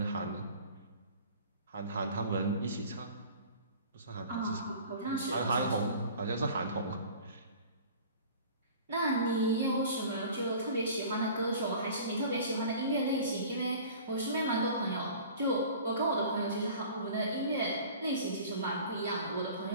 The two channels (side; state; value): both; inverted; correlation -0.44